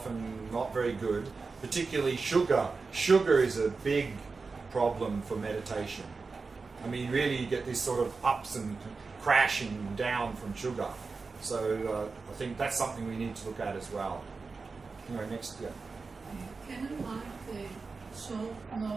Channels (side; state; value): left; quieter; 4.4 dB